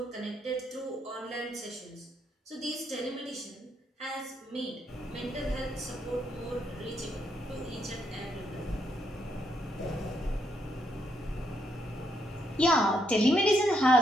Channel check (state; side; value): normal; both; correlation 0.76